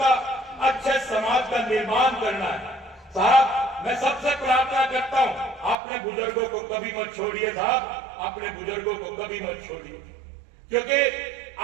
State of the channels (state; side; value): drops out; left; at 5.8 s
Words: अच्छे समाज का निर्माण करना है। साहब, मैं सबसे प्रार्थना करता हूं, अपने बुजुर्गों को कभी मत छोड़िए साहब, अपने बुजुर्गों को कभी मत छोड़िए, क्योंकि